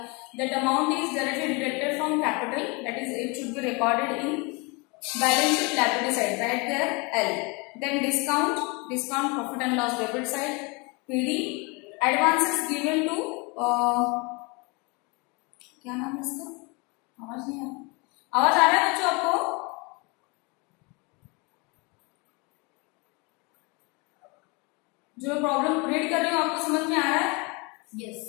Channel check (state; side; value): quieter; right; 29.0 dB